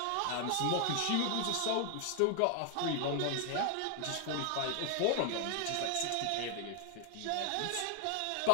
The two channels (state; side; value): different; both; correlation 0.00